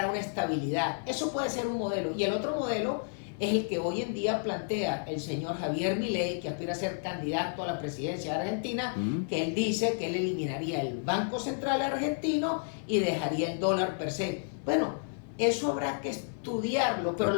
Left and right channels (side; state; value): right; silent; 57 dB below the other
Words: a una estabilidad. Eso puede ser un modelo. Y el otro modelo es el que hoy en día plantea el señor Javier Milei, que aspira a ser candidato a la presidencia de Argentina, que él dice que él eliminaría el Banco Central argentino y dejaría el dólar per se. Bueno, eso habrá que estudiarlo, pero